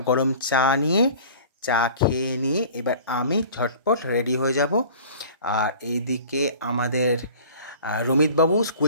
গরম চা নিয়ে। চা খেয়ে নিয়ে এবার আমি ঝটপট রেডি হয়ে যাব। আর এইদিকে আমাদের রমিতবাবু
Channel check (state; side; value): inverted; both; correlation -0.44